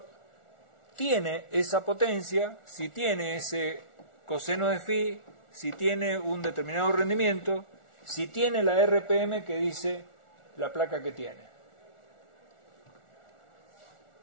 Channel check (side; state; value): right; late; 1.4 ms